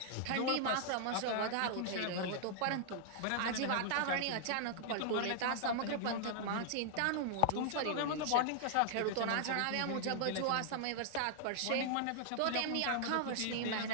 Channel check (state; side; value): different; both; correlation -0.01